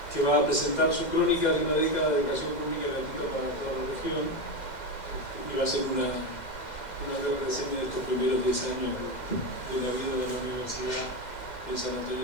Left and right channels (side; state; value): right; late; 2.1 ms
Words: que va a presentar su crónica de una década de educación pública gratuita para toda la región, y va a hacer una breve reseña de estos primeros 10 años de la vida de la universidad en San